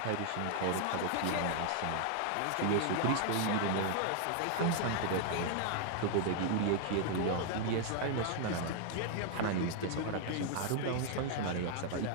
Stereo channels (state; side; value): different; both; correlation 0.00